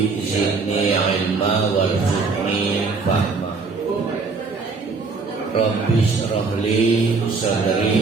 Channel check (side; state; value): left; quieter; 4.4 dB